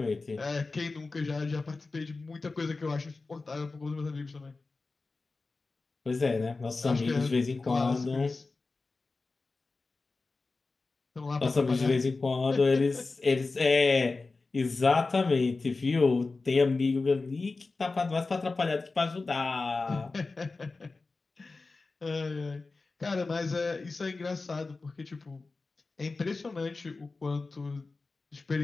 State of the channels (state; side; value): quieter; right; 3.8 dB